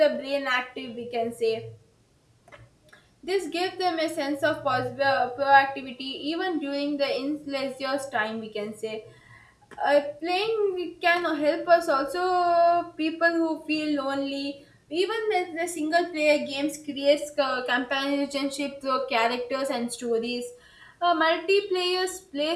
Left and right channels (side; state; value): both; identical; correlation 1.00